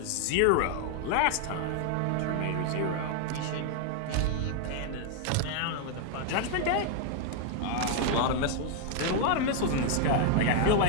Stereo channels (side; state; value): both; different; correlation 0.00